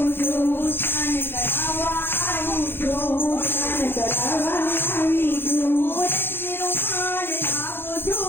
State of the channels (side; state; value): right; late; 0.10 ms